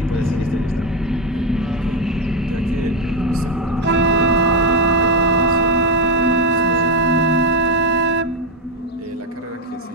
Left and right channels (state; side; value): normal; both; correlation 0.09